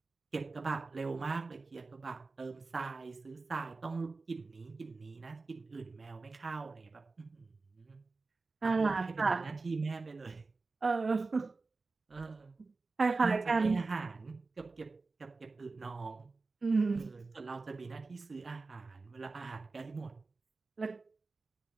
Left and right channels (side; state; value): left; quieter; 3.8 dB